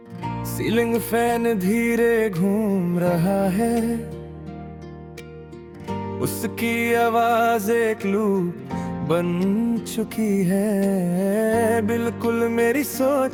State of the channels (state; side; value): identical; both; correlation 1.00